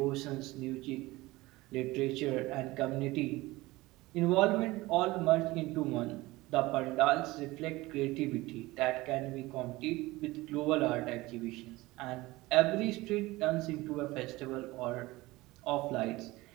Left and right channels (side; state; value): left; quieter; 20.0 dB